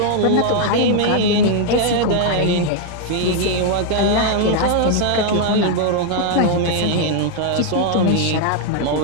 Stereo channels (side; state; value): both; different; correlation 0.00